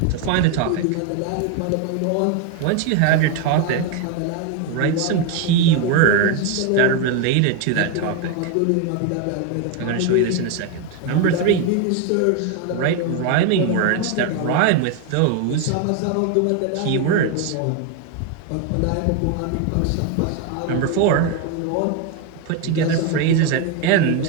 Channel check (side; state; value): both; different; correlation 0.02